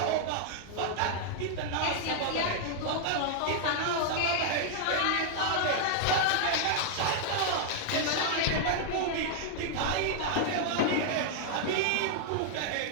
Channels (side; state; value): both; different; correlation -0.01